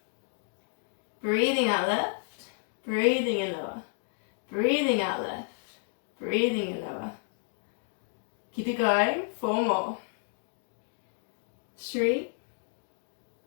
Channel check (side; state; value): right; silent; 57 dB below the other